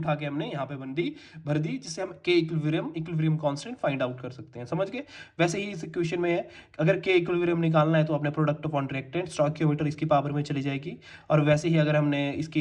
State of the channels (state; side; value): identical; both; correlation 1.00